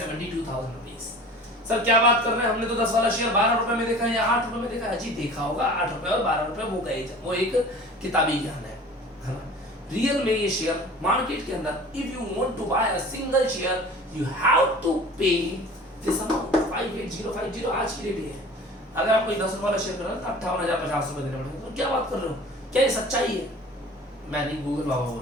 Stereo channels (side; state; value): both; normal; correlation 0.42